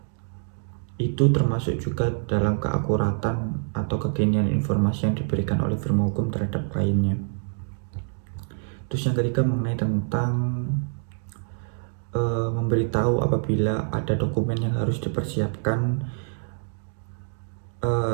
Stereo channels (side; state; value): left; silent; 61 dB below the other